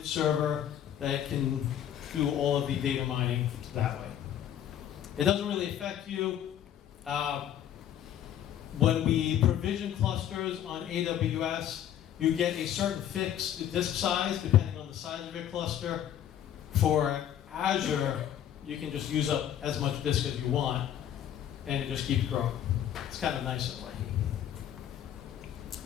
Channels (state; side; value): quieter; right; 10.5 dB